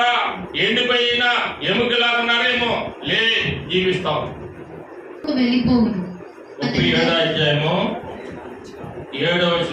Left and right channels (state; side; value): identical; both; correlation 1.00